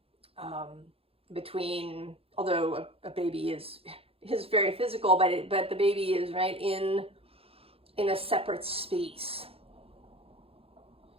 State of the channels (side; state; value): left; late; 0.28 ms